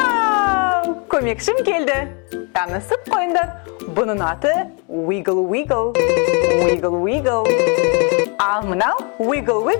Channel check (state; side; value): quieter; right; 34.4 dB